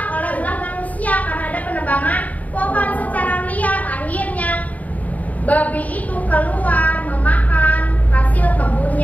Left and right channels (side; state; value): right; late; 0.073 ms